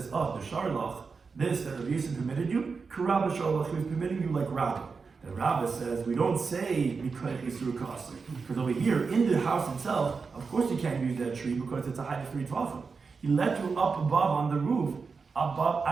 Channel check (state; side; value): quieter; left; 4.9 dB